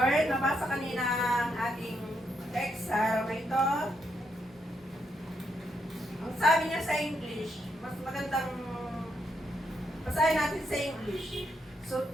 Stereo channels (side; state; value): both; normal; correlation 0.79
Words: Nabasa kanina ang ating text sa araw na ito. Ang sabi niya sa English, mas magandang basahin natin sa English. So